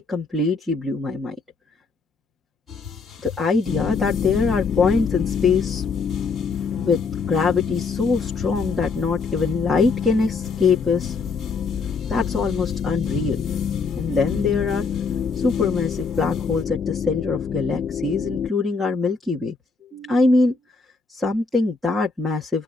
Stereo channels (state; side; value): quieter; right; 4.6 dB